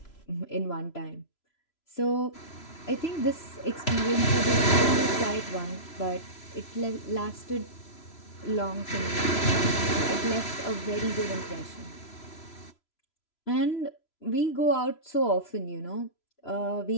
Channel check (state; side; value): late; right; 3.0 ms